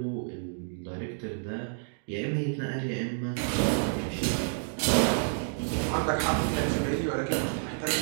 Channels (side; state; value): left; silent; digital silence